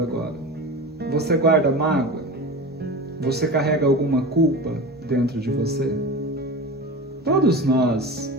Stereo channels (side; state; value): both; normal; correlation 0.30